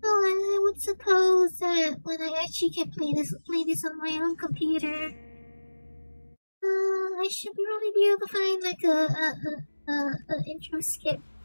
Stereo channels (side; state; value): both; inverted; correlation -1.00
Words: Well, I would suppose that when I actually can play this on my own computer, I should really be able to find like a intro skip.